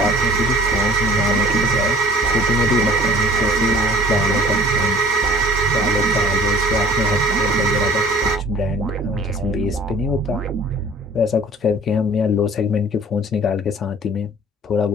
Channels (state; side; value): normal; both; correlation 0.49